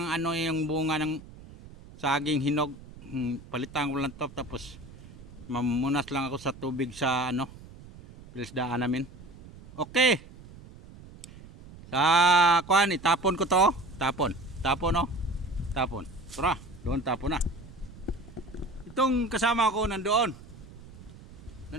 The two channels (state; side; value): noise; right; rumble, 18 dB below the sound